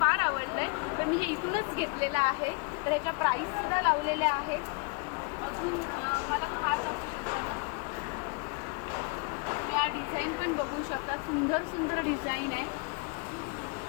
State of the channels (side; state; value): right; quieter; 30.5 dB